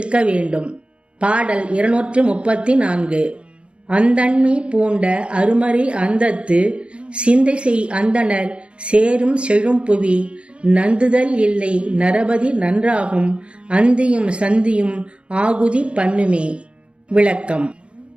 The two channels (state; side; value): late; left; 0.058 ms